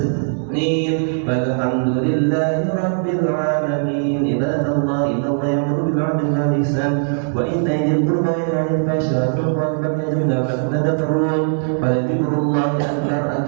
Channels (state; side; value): silent; left; digital silence